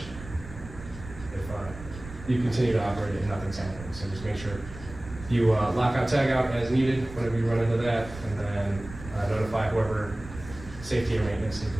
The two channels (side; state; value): right; noise; rumble, 14 dB below the sound